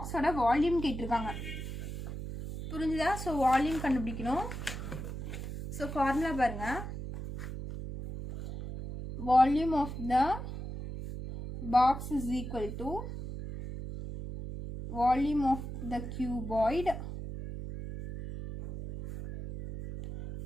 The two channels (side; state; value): right; noise; hum, 7 dB below the sound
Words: வால்யூம் கேட்டிருக்காங்க. புரிஞ்சுதா? ஸோ வால்யூம் கண்டுபிடிக்கணும். ஸோ ஃபார்முலா பாருங்கள். Volume of the box is equal to volume of the cuboid